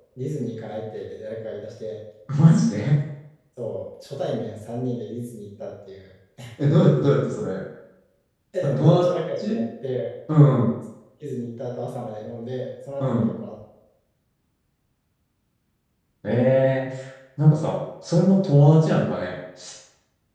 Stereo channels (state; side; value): identical; both; correlation 1.00